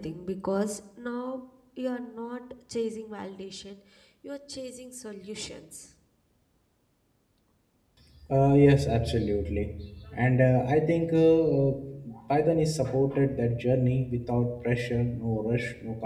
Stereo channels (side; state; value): both; identical; correlation 1.00